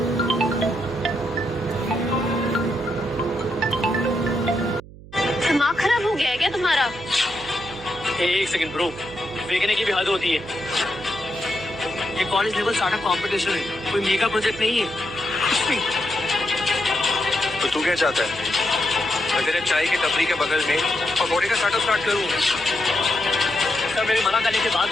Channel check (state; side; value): noise; right; hum, 18 dB below the sound